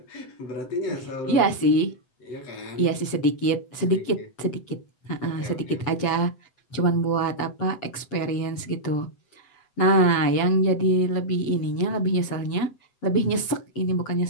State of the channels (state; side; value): late; right; 7.9 ms